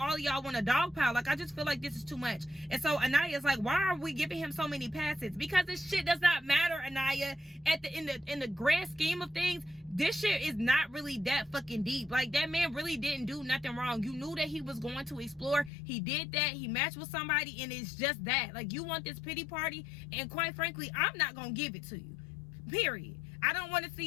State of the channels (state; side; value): drops out; right; at 15.7 s